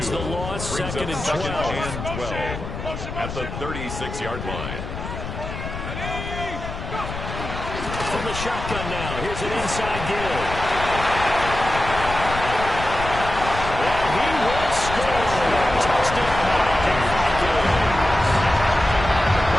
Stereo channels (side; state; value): left; noise; rumble, 7 dB below the sound